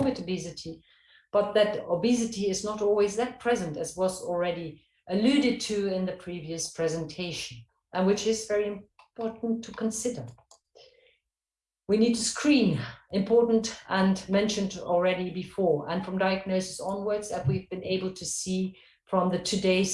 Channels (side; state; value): both; identical; correlation 1.00